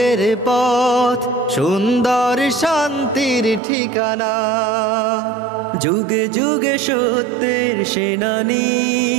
পথ, সুন্দর শান্তির ঠিকানা। যুগে যুগে সত্যের সেনানী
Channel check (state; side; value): drops out; left; at 3.6 s